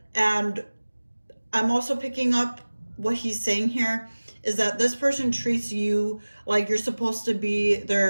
And I'm also picking up what he's saying here is that this person treats you like you're supposed to be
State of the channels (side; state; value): both; inverted; correlation -1.00